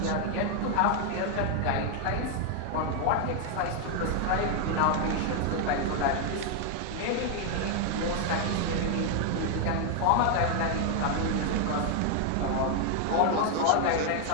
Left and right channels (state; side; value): different; both; correlation 0.00